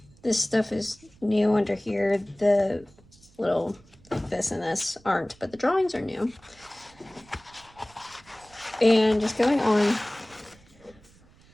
This stuff is new under here. The little this and this aren't, but the drawings are new. And just going on.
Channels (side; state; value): right; noise; rumble, 27 dB below the sound